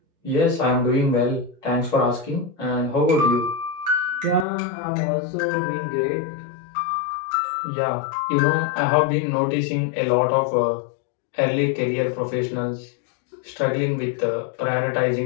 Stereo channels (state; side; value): drops out; right; at 4.5 s